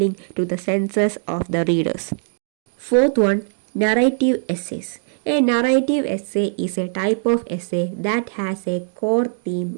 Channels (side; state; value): left; silent; digital silence